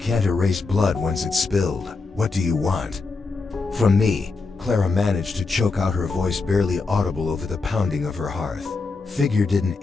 erase blood once it's spilled. What do you want from me?" Clara managed to choke out, her voice barely audible over the pounding of her hearth. Figure didn't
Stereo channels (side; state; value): right; quieter; 4.0 dB